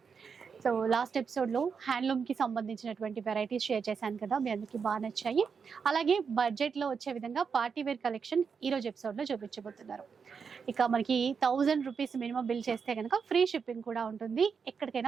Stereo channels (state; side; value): quieter; left; 6.0 dB